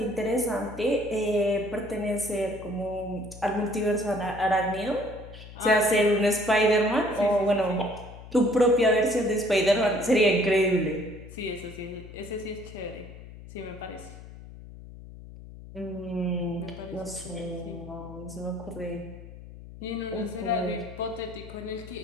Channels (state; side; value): noise; left; hum, 16 dB below the sound